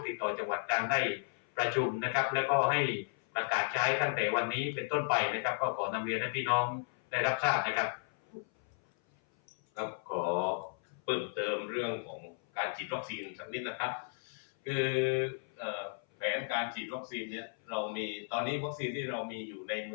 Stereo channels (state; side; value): silent; right; 55 dB below the other